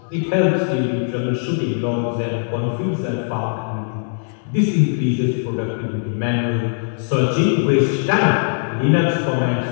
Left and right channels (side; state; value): right; silent; digital silence